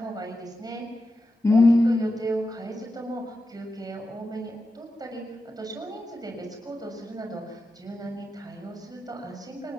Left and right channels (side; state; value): both; normal; correlation 0.90